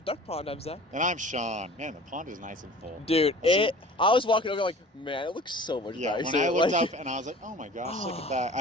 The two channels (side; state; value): both; normal; correlation 0.44